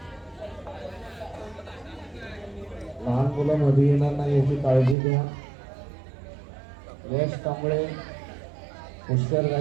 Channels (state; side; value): drops out; left; at 5.0 s